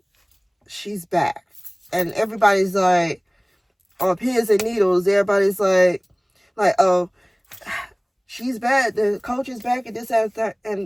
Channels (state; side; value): identical; both; correlation 1.00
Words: she's back. And everybody's like on pins and needles. Everybody's like, oh, she's back. The coach is back, and this, that,